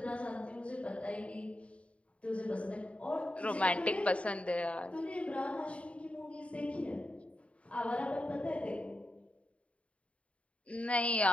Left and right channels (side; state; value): right; late; 0.064 ms